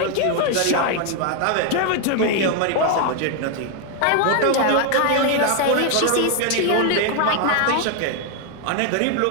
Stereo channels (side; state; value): both; different; correlation 0.01